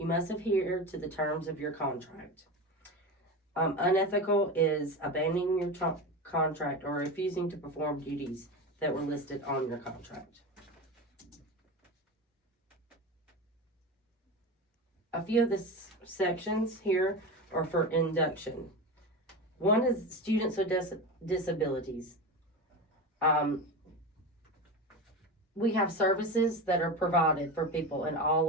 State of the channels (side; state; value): both; normal; correlation 0.24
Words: must adhere to the terms of your contract. Unethical is abandoning your contract or refusing to perform duties that were listed on your contract. A few of the sections here are for induction. One is students with disabilities. we have services that are provided for people in